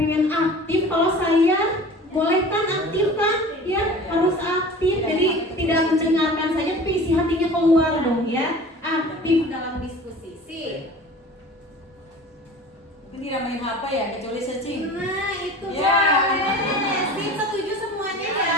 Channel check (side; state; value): both; normal; correlation 0.41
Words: aktif, kalau saya boleh kan aktif kan? Ya, harus aktif. Jadi tidak mendengarkan saja, tapi isi hatinya keluar dong ya. Aktif dalam diskusi. Sip. Mungkin tidak main HP ya, kecuali searching. Nah, itu Ya. boleh. Sip, setuju semuanya